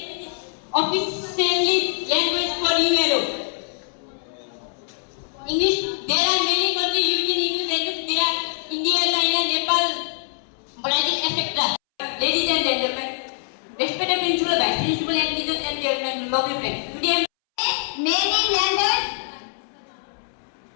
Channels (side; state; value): right; silent; 63 dB below the other